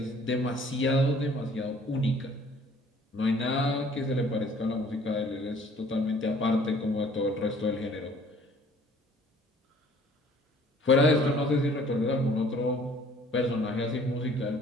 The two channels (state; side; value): normal; both; correlation 0.55